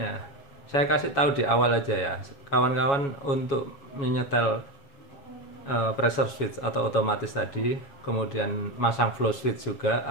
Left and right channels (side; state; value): right; late; 7.2 ms